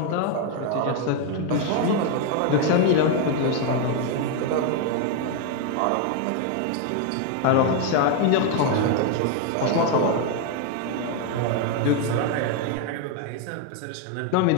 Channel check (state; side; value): different; both; correlation 0.01